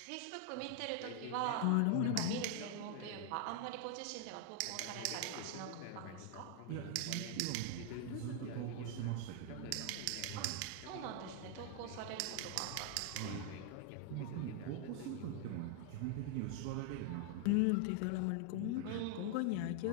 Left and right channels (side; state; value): both; different; correlation 0.00